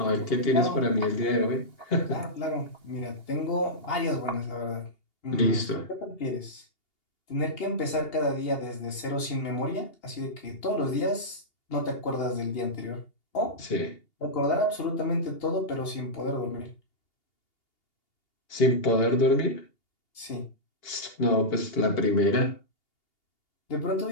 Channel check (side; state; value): right; late; 2.8 ms